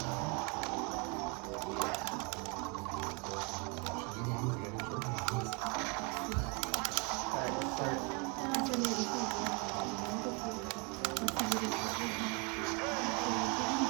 Alright, let's start.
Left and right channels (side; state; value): left; quieter; 32.5 dB